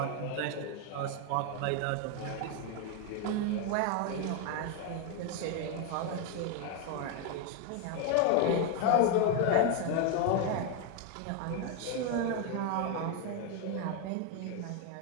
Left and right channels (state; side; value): different; both; correlation 0.01